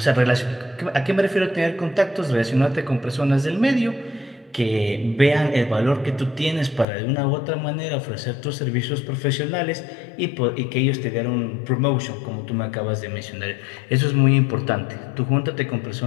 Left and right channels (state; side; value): drops out; right; at 6.9 s